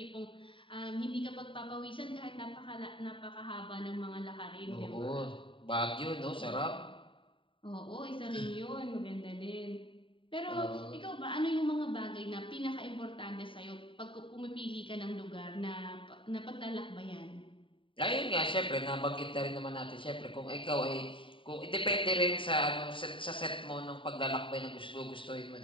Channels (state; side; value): late; right; 0.25 ms